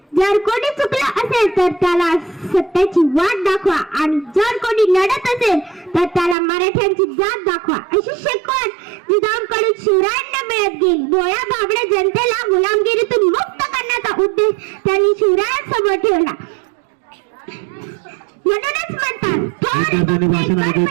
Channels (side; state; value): left; drops out; at 6.4 s